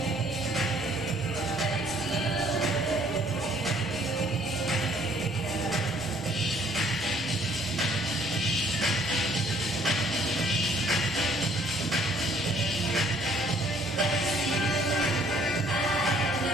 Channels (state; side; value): normal; both; correlation 0.61